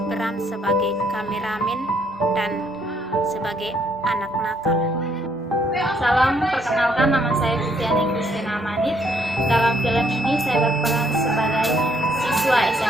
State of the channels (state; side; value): normal; both; correlation 0.69